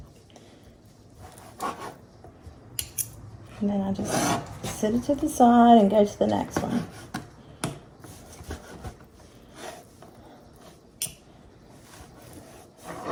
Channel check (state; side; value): identical; both; correlation 1.00